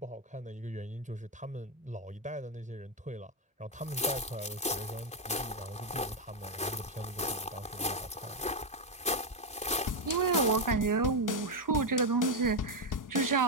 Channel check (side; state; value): both; normal; correlation 0.05